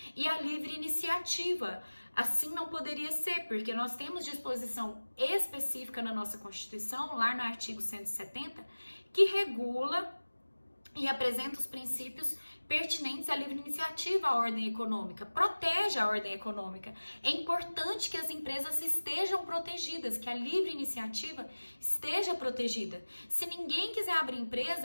e a livre iniciativa. Assim não poderia ser, porque nós temos disposição específica na nossa Constituição, lá no artigo 170, que regula e apresenta os princípios pertinentes à livre iniciativa, à ordem econômica, protege a ordem econômica. É importante que as empresas estejam protegidas, que a livre iniciativa esteja protegida. Se ninguém quiser abrir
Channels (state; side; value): inverted; both; correlation -1.00